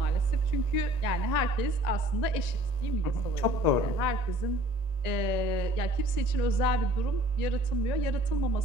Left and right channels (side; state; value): right; late; 1.9 ms